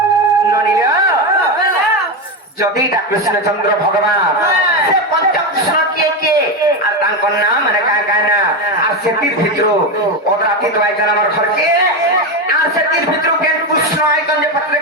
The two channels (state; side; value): normal; both; correlation 0.13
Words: যদি এটা কৃষ্ণচন্দ্র ভগবান সে পঞ্চকৃষ্ণ কিয়ে আর তাঙ্কর নাম মানে কায় কায় না আর সেটির ভিতরু অদরাতি তো আইছেন আমার ঘরকে আর সেটির ভিতরু কেন কৃষ্ণ আইছেন যে